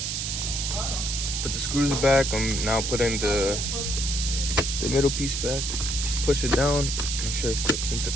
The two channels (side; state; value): right; noise; hiss, 2 dB below the sound